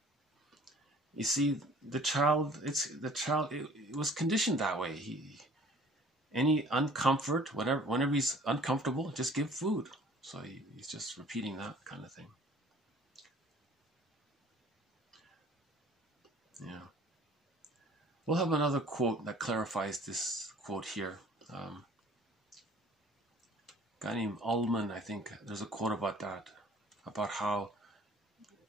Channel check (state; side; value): normal; both; correlation 0.52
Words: you see, the child, it was conditioned that way. Any uncomfort, whenever he's uncomfortable, just give food. So he's just repeating that kind of thing. Yeah. We'll have another quote that clarifies this quote here. A guy named Ullman, I think, there's a quote about that, about how